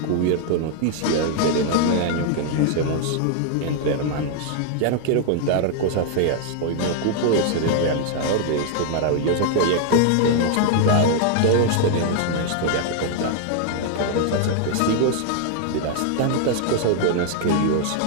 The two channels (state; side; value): different; both; correlation 0.00